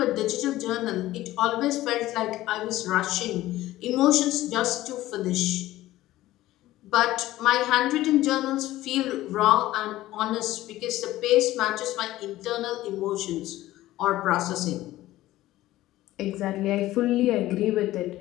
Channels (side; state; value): right; quieter; 15.8 dB